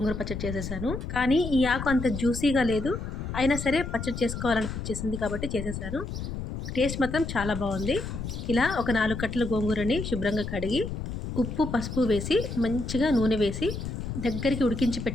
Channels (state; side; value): noise; left; rumble, 6 dB below the sound